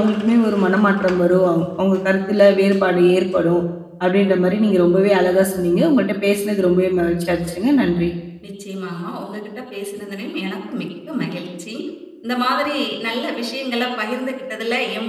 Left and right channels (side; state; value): both; identical; correlation 1.00